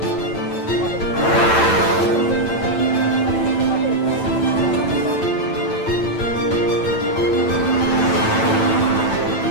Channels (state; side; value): late; right; 9.0 ms